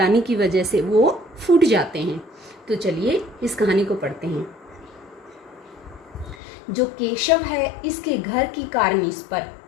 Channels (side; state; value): right; drops out; at 6.4 s